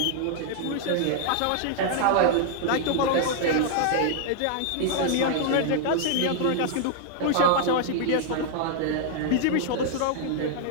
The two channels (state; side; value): different; both; correlation -0.01